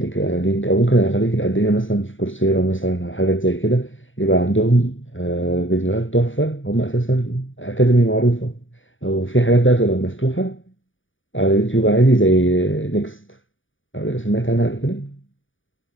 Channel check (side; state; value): right; late; 0.57 ms